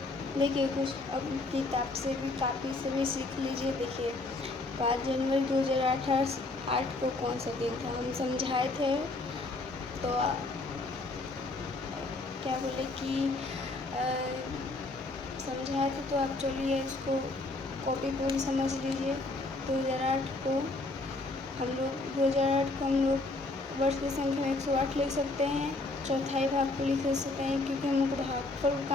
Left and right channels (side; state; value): right; quieter; 3.1 dB